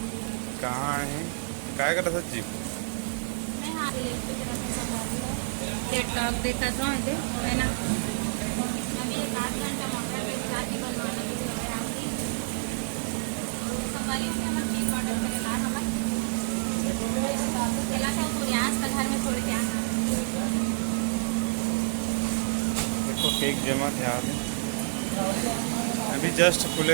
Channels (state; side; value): silent; left; digital silence